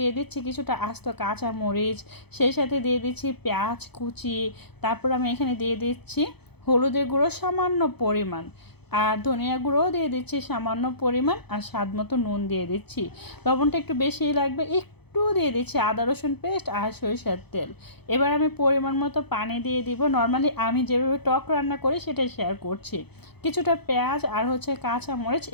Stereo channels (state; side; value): late; right; 0.98 ms